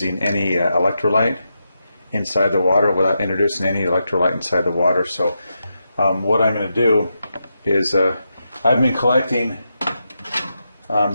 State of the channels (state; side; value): inverted; both; correlation -0.86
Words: any electrolyte inside the water, without introducing any electrolyte inside the water. So what I'm going to do is I've been collecting